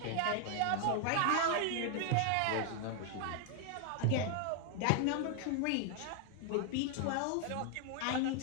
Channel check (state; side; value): different; both; correlation 0.00